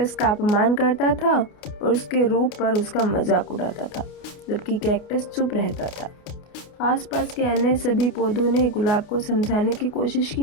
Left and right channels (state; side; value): late; right; 29 ms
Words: का अपमान करता था और उसके रूप पर उसका मजाक उड़ाता था, जबकि कैक्टस चुप रहता था। आसपास के अन्य सभी पौधों ने गुलाब को समझाने की कोशिश